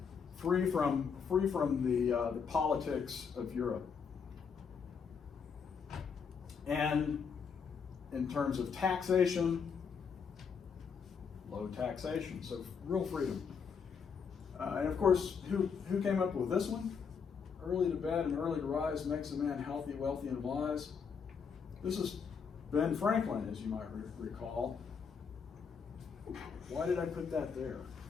Free from the politics of Europe. And in terms of taxation, low taxation, so real freedom. And of course, who came up with this one? Early to bed and early to rise makes a man healthy, wealthy, and wise. This is Ben Franklin, as you might recall. Why did I put that there?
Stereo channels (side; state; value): right; quieter; 6.2 dB